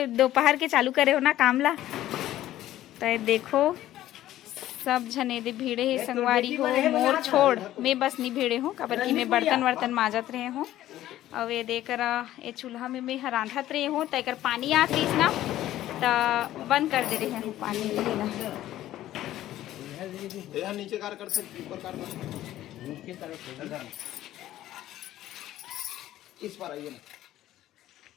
दोपहर के चालू करे हो ना कामला तो ये देखो सब जने दे भीड़े है संगवारी हो मोर छोड़ मैं बस नहीं भीड़े हूँ काबर की मैं बर्तन वर्तन माजत रहे हूँ और ये देकर ये चूल्हा में मैं रांधत रहे हूँ तो एक पानी आत रही ना तो बंद कर दे रहे हैं पानी नीचे कार कर सकते ऊपर कार नीचे कर इस पर आइए ना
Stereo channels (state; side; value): quieter; right; 13.8 dB